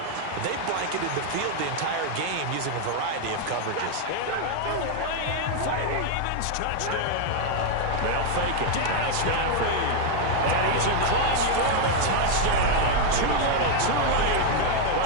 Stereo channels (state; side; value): different; both; correlation 0.01